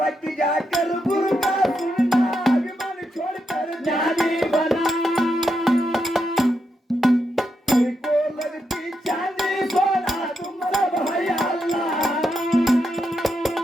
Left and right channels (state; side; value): normal; both; correlation 0.83